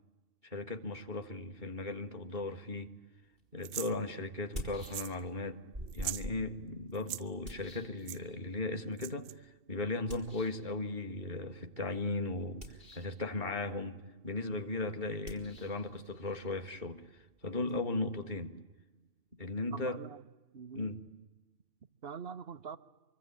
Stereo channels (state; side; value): late; left; 2.7 ms